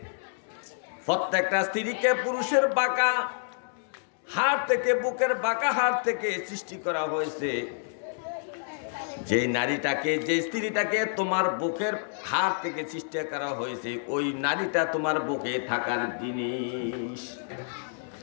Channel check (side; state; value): right; silent; digital silence